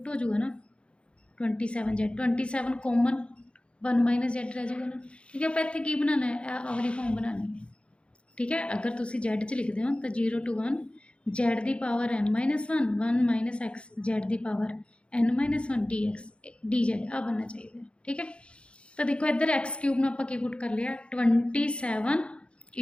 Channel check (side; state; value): right; late; 0.058 ms